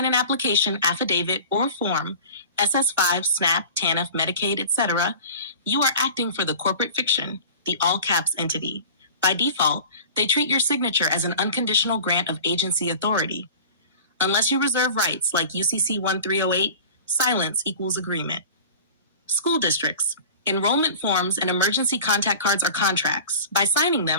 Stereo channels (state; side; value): inverted; both; correlation -0.38